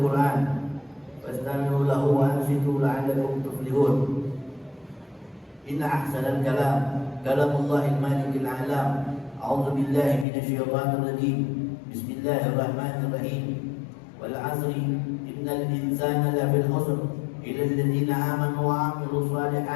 Qur'an fastami'u lahu wa ansitu la'allakum tuflihun. إن أحسن الكلام كلام الله المالك الأعلام. أعوذ بالله من الشيطان الرجيم. بسم الله الرحمن الرحيم. والعصر إن الإنسان لفي الخسر إلا الذين آمنوا وعملوا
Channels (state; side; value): drops out; right; at 10.2 s